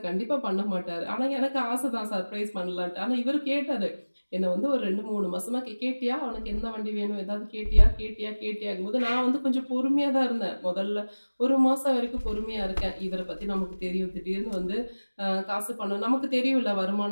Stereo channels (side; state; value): both; inverted; correlation -1.00